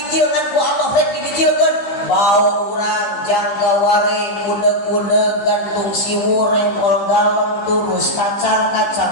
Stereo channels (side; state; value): right; late; 15 ms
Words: ngan ku Allah rek dibijilkeun bau urang jangga ware kudeg-kudeg gantung siwur rempol galon turus